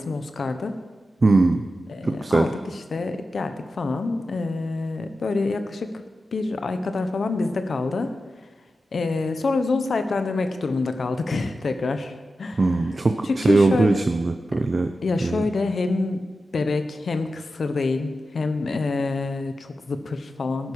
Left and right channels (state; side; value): normal; both; correlation 0.91